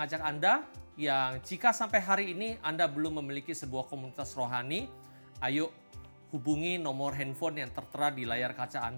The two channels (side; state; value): both; inverted; correlation -1.00